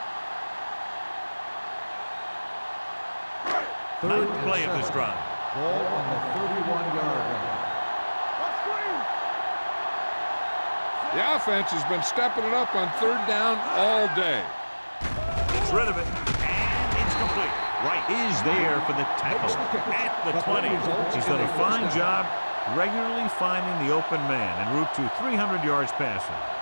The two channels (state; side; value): inverted; both; correlation -1.00